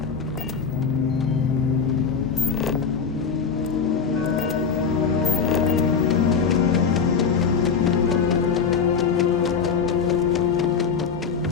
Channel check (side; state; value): right; quieter; 6.0 dB